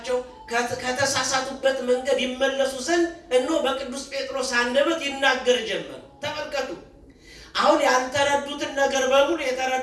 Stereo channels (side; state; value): both; identical; correlation 1.00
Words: ከተሳሳቱበት መንገድ ይመለሱ ዘንድ እነሆ በቅዱስ ጴጥሮስ አንደበት ይናገር ጀመር። ተመልከቱ። አሁን ያልተረዱትን ነገር በሙሉ